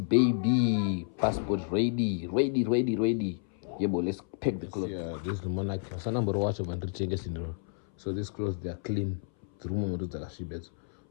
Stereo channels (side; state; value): right; silent; 57 dB below the other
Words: Passport ready. Yeah, but let's pack the clothes. Yeah, this is the monarch. So these clothes, they are clean.